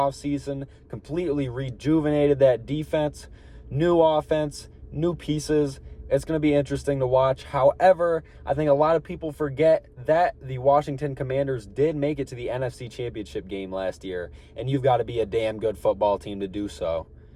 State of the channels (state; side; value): identical; both; correlation 1.00